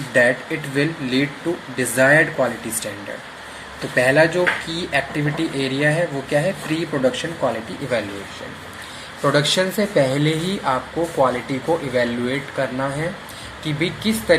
that it will lead to desired quality standard. तो पहला जो की activity area है वो क्या है, pre production quality evaluation. Production से पहले ही आपको क्वालिटी को इवैल्यूएट करना है कि भी किस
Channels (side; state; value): both; identical; correlation 1.00